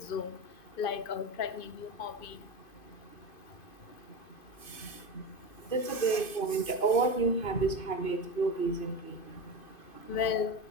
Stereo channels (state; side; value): late; right; 2.5 ms